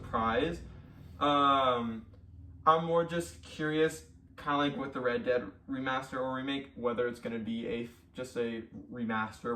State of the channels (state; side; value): identical; both; correlation 1.00